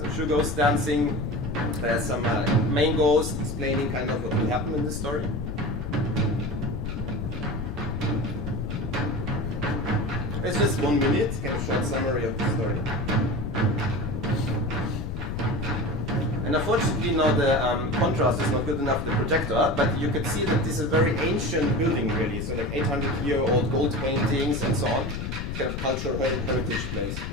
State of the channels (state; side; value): noise; left; rumble, 4 dB below the sound